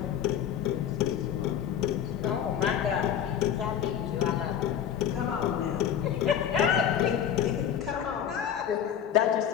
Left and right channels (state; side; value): quieter; right; 9.3 dB